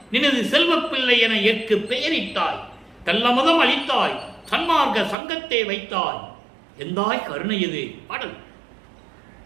நினது செல்வ பிள்ளை என ஏற்கு பெயரிட்டாய். கள்ளமதம் அளித்தாய், சன்மார்க்க சங்கத்தை வைத்தாய். எந்தாய் கருணை இது பாடல்.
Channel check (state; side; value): drops out; left; at 5.2 s